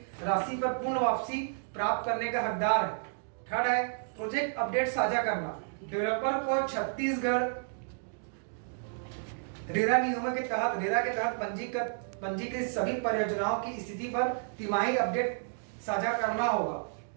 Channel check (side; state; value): left; silent; digital silence